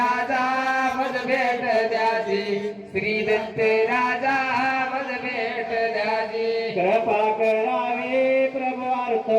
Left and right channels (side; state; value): both; identical; correlation 1.00